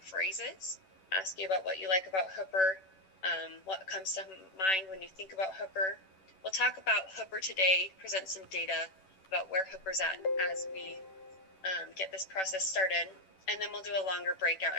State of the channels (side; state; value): right; late; 11 ms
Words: Ask you about what you like about Hooper, what comes to mind when you think about Hooper. We'll talk about Hooper today, present some data about where Hooper's at as we get this process started. And then we'll do a longer breakout